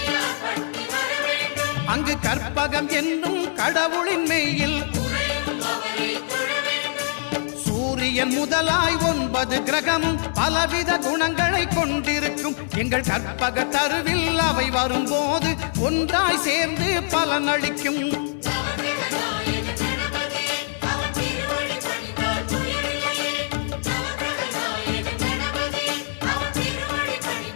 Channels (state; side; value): silent; right; digital silence